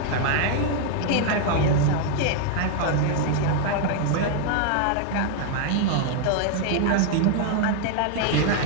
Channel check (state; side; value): different; both; correlation 0.00